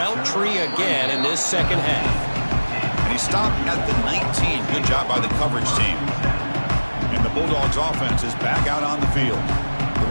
tree again in this second half. And he stopped at the 19. Good job by the coverage team. And the Bulldogs offense is back out on the field.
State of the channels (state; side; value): inverted; both; correlation -1.00